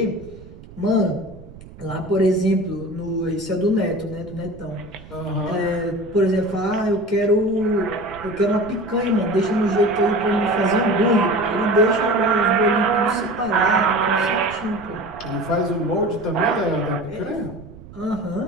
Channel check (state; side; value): noise; right; rumble, 19 dB below the sound